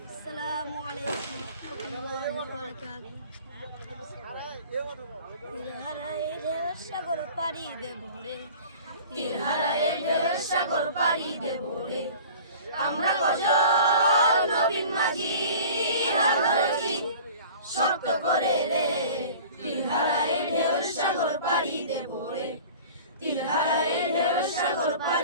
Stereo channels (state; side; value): inverted; both; correlation -0.42